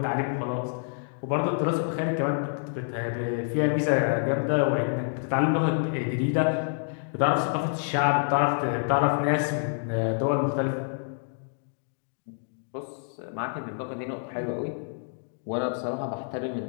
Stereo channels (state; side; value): silent; right; digital silence